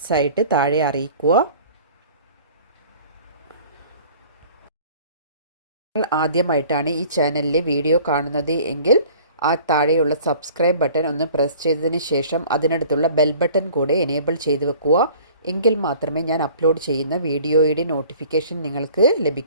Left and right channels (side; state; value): both; inverted; correlation -0.48